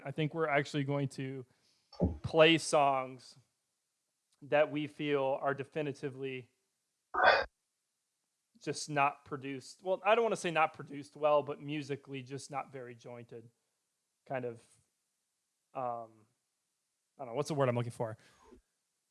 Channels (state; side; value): identical; both; correlation 1.00